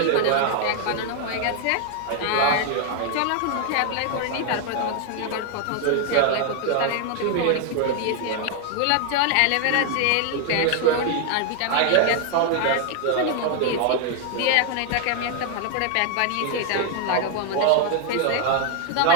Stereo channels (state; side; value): different; both; correlation 0.00